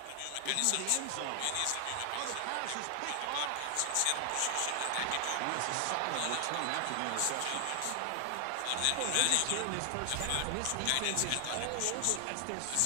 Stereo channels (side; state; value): both; different; correlation 0.00